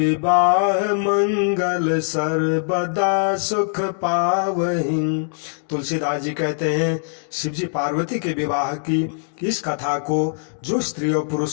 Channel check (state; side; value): silent; right; digital silence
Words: मंगल सर्वदा सुख पावहि। तुलसीदास जी कहते हैं शिव जी पार्वती के विवाह की इस कथा को जो स्त्री और